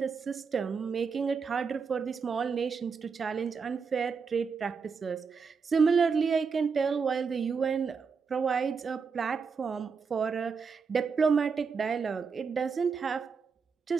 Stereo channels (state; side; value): quieter; left; 5.5 dB